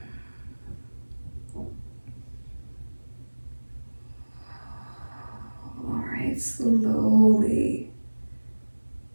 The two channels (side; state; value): both; inverted; correlation -1.00